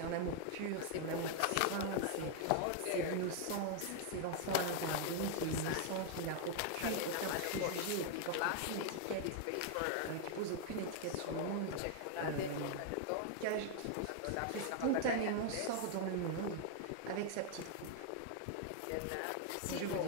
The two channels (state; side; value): different; both; correlation 0.00